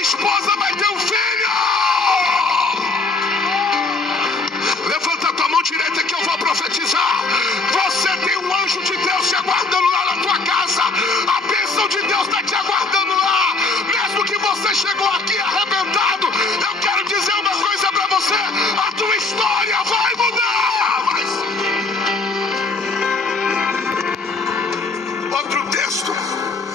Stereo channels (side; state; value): right; quieter; 3.6 dB